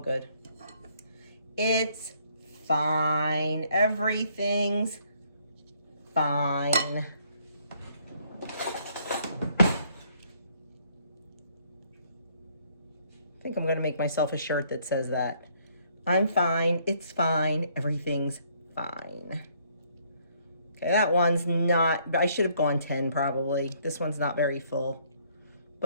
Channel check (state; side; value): inverted; both; correlation -0.66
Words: It's fine. Everything's fine. I think I'm going to make myself a shirt that says that. I'm fine. It's fine. Everything's fine. Okay, that one's not, I should have gone 10 probably. This one's not very full,